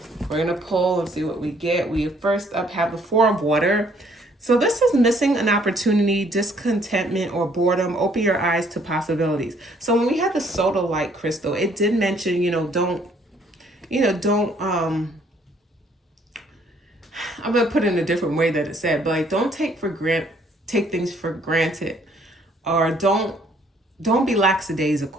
We're going to pull and see what we get. We first up have the Four of Water. So this is missing an opportunity, discontentment, or boredom. Open your eyes to possibilities. So when we had the sodalite crystal, it did mention, don't, I'm going to put it in a different way that it said, but like, don't take things for granted, or don't be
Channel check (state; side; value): normal; both; correlation 0.64